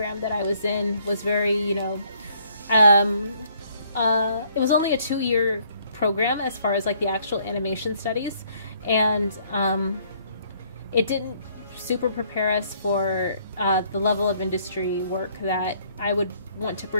that I was in was very, it was only a 2-year program as far as like the actual animation studies, and it didn't super prepare us for the level of industry work that I would want to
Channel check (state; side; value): inverted; both; correlation -0.65